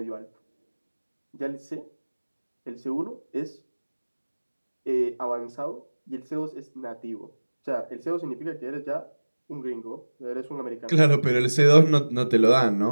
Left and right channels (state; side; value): inverted; both; correlation -1.00